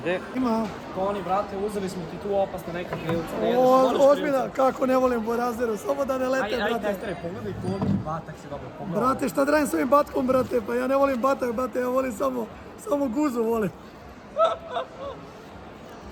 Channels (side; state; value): both; identical; correlation 1.00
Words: Ima. Toni, brate, uzeli smo ti tu opasne neka krilca, ne jedeš, Ozbiljno, kako ne volim Borazeru, samo da ne lete, brate. Ajde, testere, pogledaj koliki batak si dobio, pogledaj. Brate, šta da radim s ovim batkom, brate, pa ja ne volim batak, brate, ja volim samo guzu, volim.